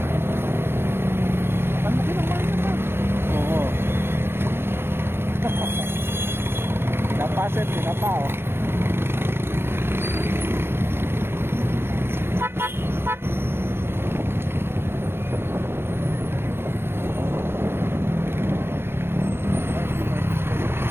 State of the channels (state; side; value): late; left; 0.11 ms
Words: Ang laki ng bayan na. Oo. Napaset, pinapao.